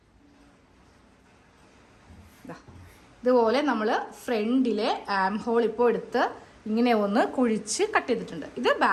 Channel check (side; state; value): both; identical; correlation 1.00